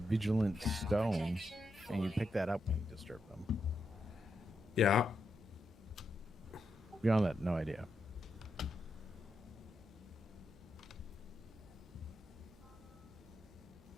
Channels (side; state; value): both; normal; correlation 0.84